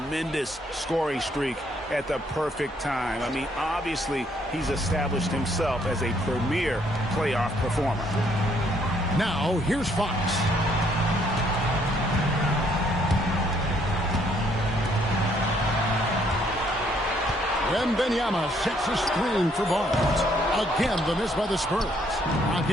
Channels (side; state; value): both; normal; correlation 0.68